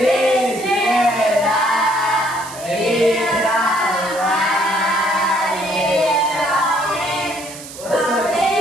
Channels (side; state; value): right; noise; hiss, 14 dB below the sound